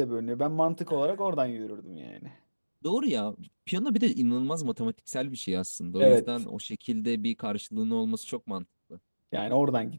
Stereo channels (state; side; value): inverted; both; correlation -1.00